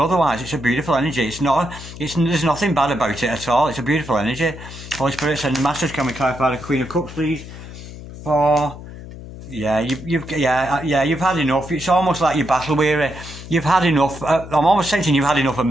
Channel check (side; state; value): left; noise; hum, 13 dB below the sound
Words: otherwise. It's a beautiful energy. There's nothing bad about it at all. It's a beautiful energy. Holy Spirit, send the Masters, can we clarify the Queen of Cups, please? You've had enough. It's almost like you're battle weary. You've had enough. I'm almost sensing you've had enough of